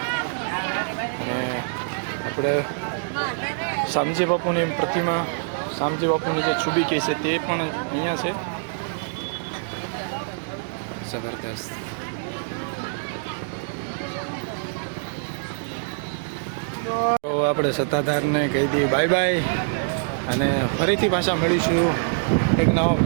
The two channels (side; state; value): left; silent; digital silence